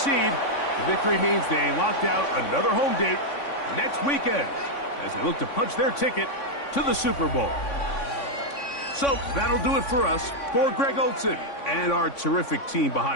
The victory means they locked out another home date next weekend as they look to punch their ticket to the Super Bowl. So that'll do it for us. For Greg Olson and our terrific team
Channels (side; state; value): right; late; 3.5 ms